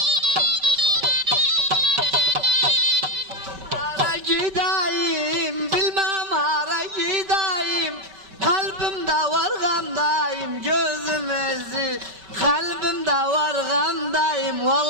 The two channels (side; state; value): left; late; 5.2 ms